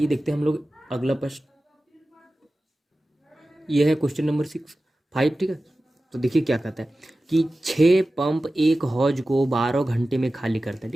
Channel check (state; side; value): normal; both; correlation 0.95